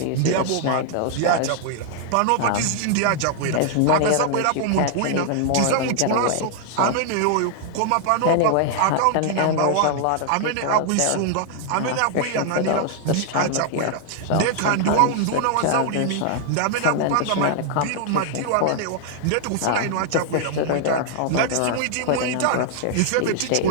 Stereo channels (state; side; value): different; both; correlation 0.00